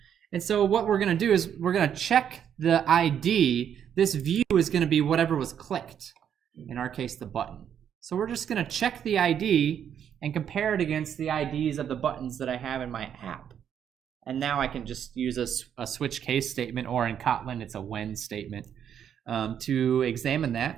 And so what we're going to do is we're going to check the ID. This view is going to be whatever was clicked, in our case the button. So we're just going to check the ID and compare it against the IDs of the buttons that I have in my app. And now I can just use a switch case statement, or in Kotlin, it's a when statement, to examine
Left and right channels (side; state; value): left; quieter; 8.9 dB